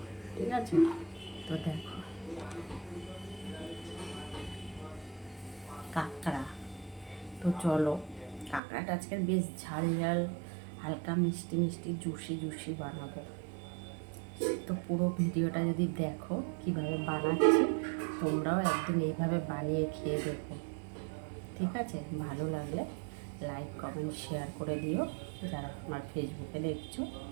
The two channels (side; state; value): left; drops out; at 8.6 s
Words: ঠিক আছে, তো দেখো কাঁকড়া। তো চলো, কাঁকড়াটা আজকে বেশ ঝাল ঝাল, হালকা মিষ্টি মিষ্টি, জুসি জুসি বানাবো। তো পুরো ভিডিওটা যদি দেখো কিভাবে বানাচ্ছি, তোমরাও একদিন এইভাবে বানিয়ে খেয়ে দেখো। ঠিক আছে, ভালো লাগলে লাইক কমেন্ট শেয়ার করে দিও। যারা আমার ফেসবুকে দেখছো,